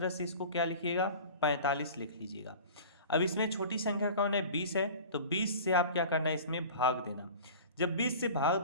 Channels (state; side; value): inverted; both; correlation -0.39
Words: से इसको क्या लिखिएगा? 45 लिख लीजिएगा। अब इसमें छोटी संख्या कौन है? 20 है, तो 20 से आप क्या करना है? इसमें भाग देना। जब 20 से भाग